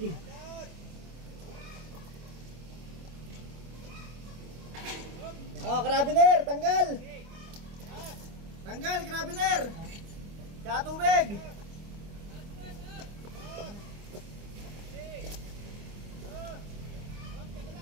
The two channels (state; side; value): late; left; 25 ms